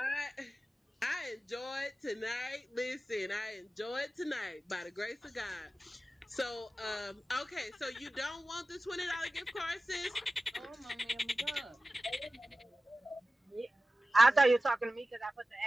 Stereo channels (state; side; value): normal; both; correlation 0.95